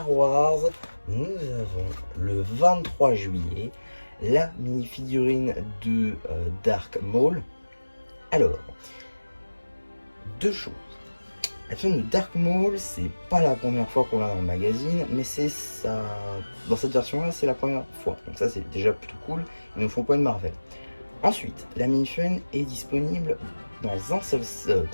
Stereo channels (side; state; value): both; inverted; correlation -1.00